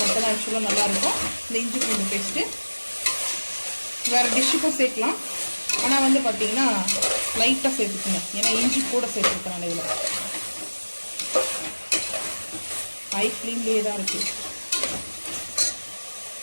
மட்டும் தான் ஆக்சுவலாக நல்லாயிருக்கும் இந்த இஞ்சி பூண்டு பேஸ்ட்டு. வேறு டிஷ்ஷுக்கும் சேர்க்கலாம், ஆனால் வந்து பார்த்தீங்கன்னா லைட்டாக சேர்த்துக்குங்க, ஏன்னா இஞ்சி கூட சேர்த்துருக்கேன். இதில் ஹை ஃப்ளேம்லேயே தான் இருக்குது.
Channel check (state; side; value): inverted; both; correlation -1.00